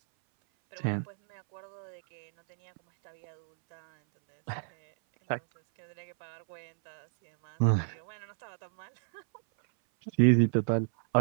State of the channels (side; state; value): left; silent; 57 dB below the other